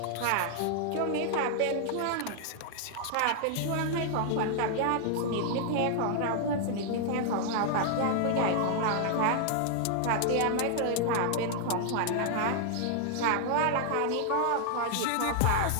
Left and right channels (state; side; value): different; both; correlation 0.00